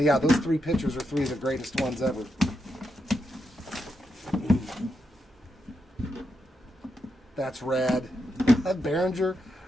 yeah, those 3 pictures are 3 of the greatest ones ever. That's rad. Berenger,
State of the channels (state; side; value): normal; both; correlation 0.84